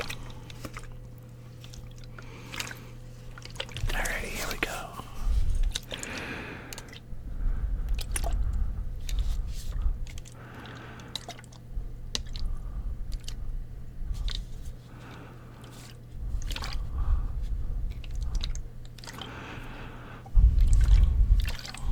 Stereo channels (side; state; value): both; identical; correlation 1.00